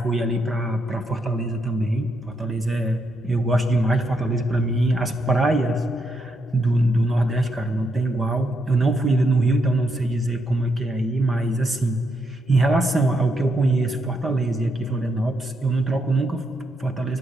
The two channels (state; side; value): normal; both; correlation 0.79